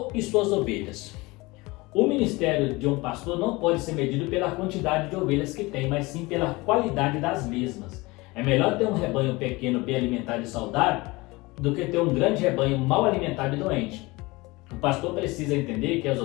e suas ovelhas. O ministério de um pastor não pode ser medido pela quantidade de ovelhas que tem, mas sim pela qualidade das mesmas. É melhor ter um rebanho pequeno, bem alimentado e saudável, do que ter um grande rebanho mal alimentado e doente. O pastor precisa entender que as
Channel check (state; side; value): quieter; right; 22.9 dB